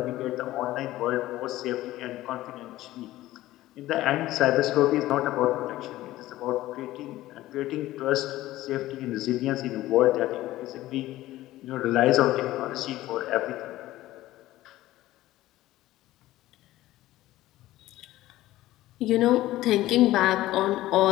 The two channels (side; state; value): right; quieter; 16.0 dB